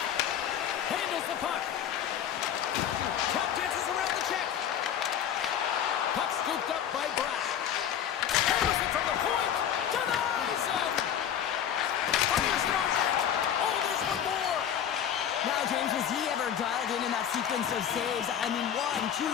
Handles the puck. Tap dances around the check. Puck scooped up by Bratt. Hammers it from the point. Denies him. Fires it on net. Oh, there's one more. Now, James, was he ever dialed in that sequence of saves? I mean, 1, 2,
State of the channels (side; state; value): right; quieter; 9.4 dB